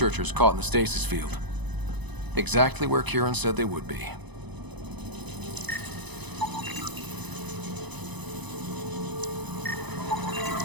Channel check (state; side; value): late; left; 0.99 ms